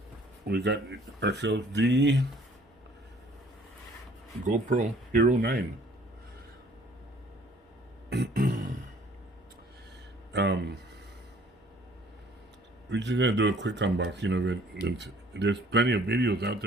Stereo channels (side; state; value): both; normal; correlation 0.56